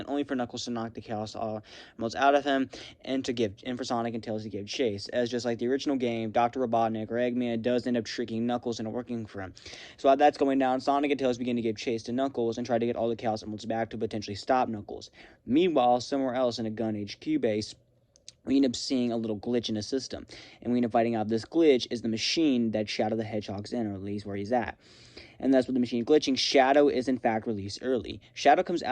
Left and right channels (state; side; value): identical; both; correlation 1.00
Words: only for Knuckles to knock the Chaos Emeralds out of him, and for Sonic and Tails to give chase. As just like the original game, Dr. Robotnik or Eggman does end up tricking Knuckles into working for him. So while that's going down, Sonic and Tails begin to give chase to Knuckles and try to get all the Chaos Emeralds back to potentially stop Knuckles. Meanwhile, somewhere else in a Gun HQ base, we end up seeing a little glitch in the system, and we end up finding out this glitch is the machine that Shadow the Hedgehog's in, or at least where he's at. And that's with the machine glitching, Shadow is in fact released early. Shadow comes